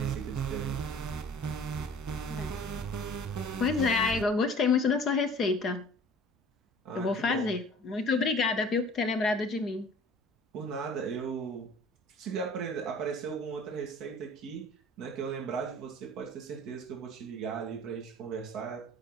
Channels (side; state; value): both; normal; correlation 0.48